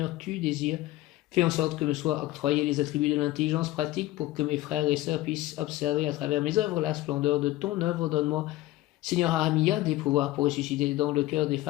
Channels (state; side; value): quieter; right; 16.6 dB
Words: tu désires. Fais en sorte que me soient octroyés les attributs de l'intelligence pratique pour que mes frères et sœurs puissent observer à travers mes œuvres la splendeur de ton œuvre. Donne-moi, Seigneur Ahamia, des pouvoirs pour ressusciter dans le cœur des